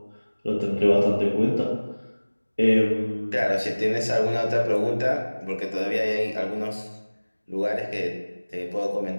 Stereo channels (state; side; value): inverted; both; correlation -1.00